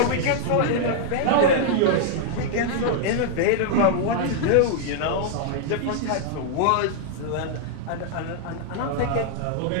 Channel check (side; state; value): both; different; correlation -0.01